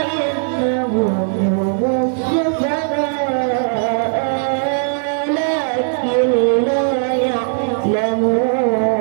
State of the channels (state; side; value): silent; left; digital silence